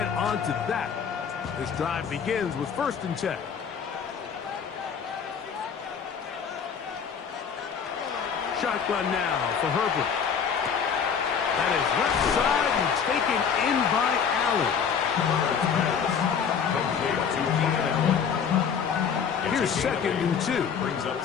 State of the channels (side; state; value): right; quieter; 6.9 dB